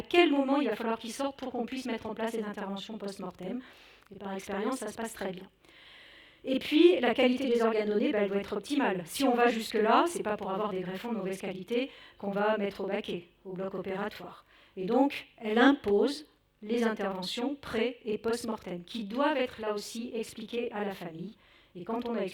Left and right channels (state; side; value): identical; both; correlation 1.00